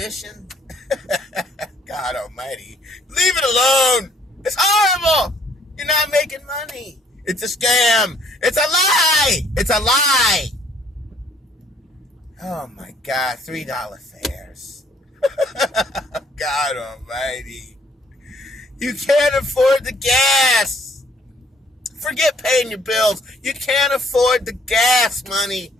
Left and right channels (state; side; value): normal; both; correlation 0.63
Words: God almighty. Leave it alone. It's horrible. You're not making money. It's a scam. It's a lie. It's a lie. Oh my God. $3 fares. God almighty. You can't afford the gas. Forget paying your bills. You can't afford the gas money